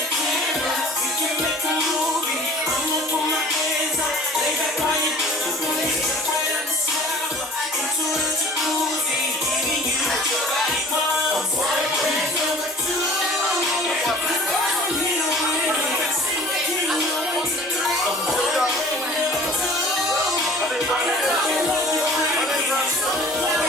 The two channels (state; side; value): normal; both; correlation 0.47